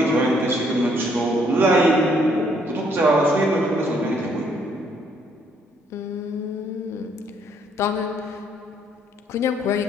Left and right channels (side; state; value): both; normal; correlation 0.68